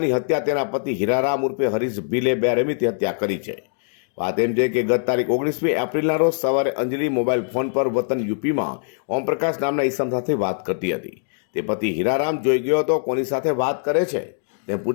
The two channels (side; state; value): right; silent; digital silence